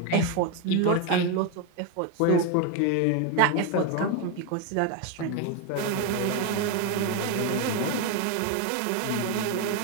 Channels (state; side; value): different; both; correlation 0.02